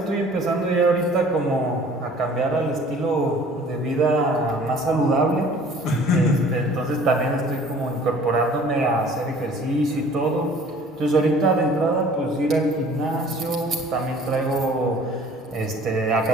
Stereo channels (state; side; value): normal; both; correlation 0.50